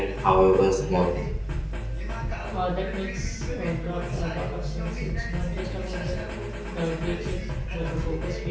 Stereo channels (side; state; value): both; identical; correlation 1.00